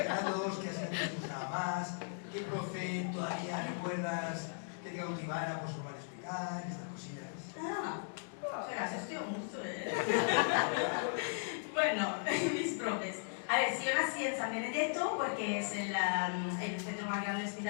grados? ¿Qué asignaturas te gustaba más? ¿Qué profe todavía recuerdas que te cautivara por su modo de explicar? Estas cosillas. Espera, se estudia mucho, Bueno, mis profes. A ver, si yo nací en San Benedetto, porque es el centro más grande de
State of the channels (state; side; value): silent; right; digital silence